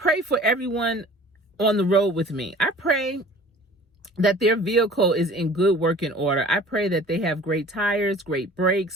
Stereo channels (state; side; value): normal; both; correlation 0.46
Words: for everyone on the road with me. I pray that their vehicle is in good working order. I pray that they have great tires, great